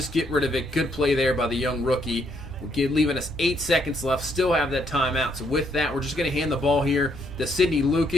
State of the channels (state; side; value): normal; both; correlation 0.73